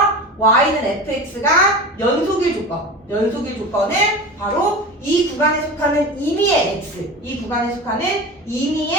y는 fx가 연속일 조건은 바로 이 구간에 속하는 임의의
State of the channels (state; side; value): normal; both; correlation 0.30